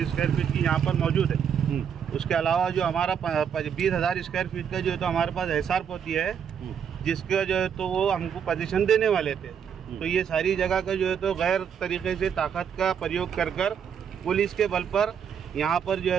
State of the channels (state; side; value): quieter; left; 7.8 dB